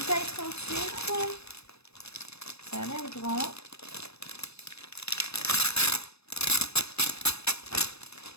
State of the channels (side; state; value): right; late; 0.79 ms